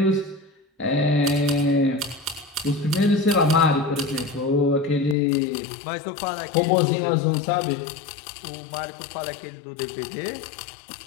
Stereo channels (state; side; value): drops out; right; at 5.2 s